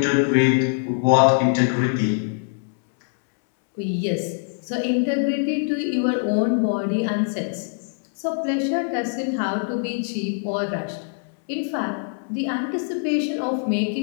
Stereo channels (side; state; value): right; silent; 63 dB below the other